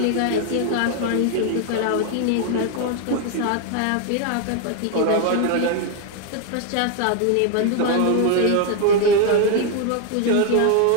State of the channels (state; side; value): different; both; correlation 0.01